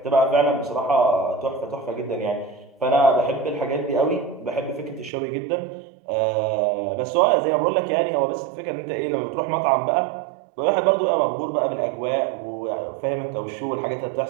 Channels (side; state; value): left; drops out; at 5.1 s